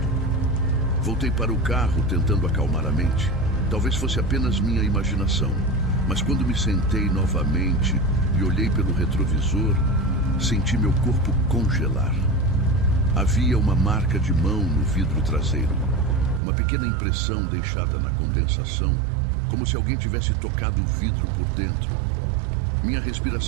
Voltei para o carro, tentando acalmar a mente. Talvez fosse apenas minha imaginação, mas quando me sentei novamente e olhei pelo retrovisor, senti meu corpo congelar. Havia uma marca de mão no vidro traseiro, uma pequena impressão deixada na condensação, como se alguém tivesse tocado o vidro por dentro. Minha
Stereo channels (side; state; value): left; drops out; at 16.4 s